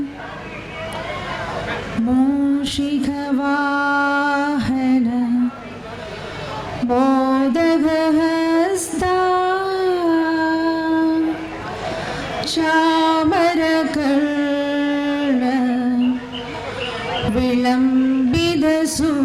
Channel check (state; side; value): identical; both; correlation 1.00